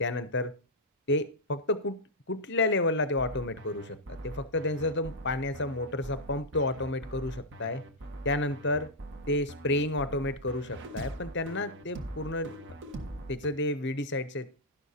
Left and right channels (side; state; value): both; normal; correlation -0.07